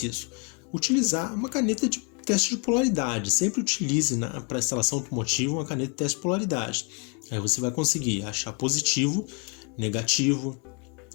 Utilizar uma caneta de teste de polaridade. Sempre utilize para instalação automotiva uma caneta de teste de polaridade. Aí você vai conseguir achar positivo, negativo,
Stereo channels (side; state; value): right; quieter; 33.3 dB